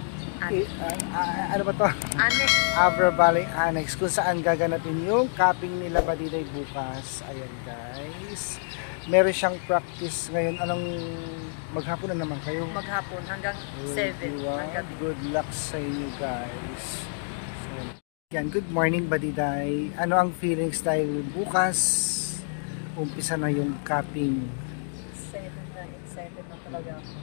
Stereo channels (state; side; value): silent; right; digital silence